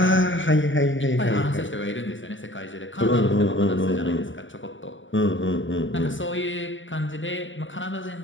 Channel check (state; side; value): late; right; 0.56 ms